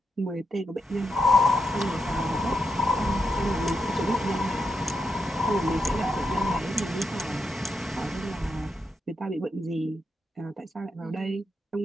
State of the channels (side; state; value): both; normal; correlation 0.83